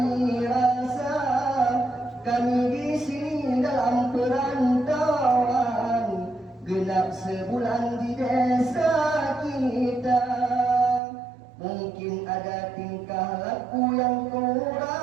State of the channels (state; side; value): drops out; left; at 11.0 s